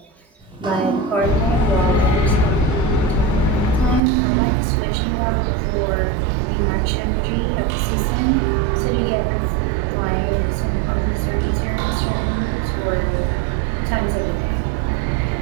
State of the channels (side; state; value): left; drops out; at 4.0 s